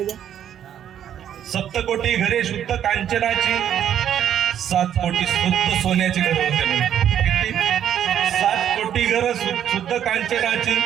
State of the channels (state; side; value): quieter; left; 9.9 dB